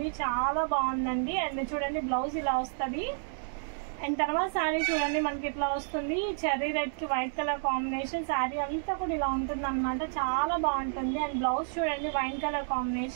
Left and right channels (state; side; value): silent; left; digital silence